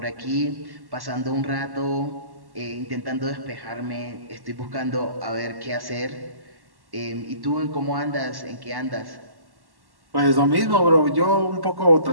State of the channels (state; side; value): late; left; 1.1 ms